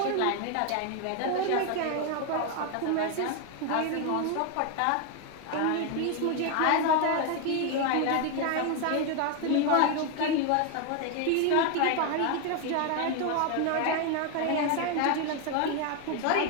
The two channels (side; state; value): both; different; correlation 0.01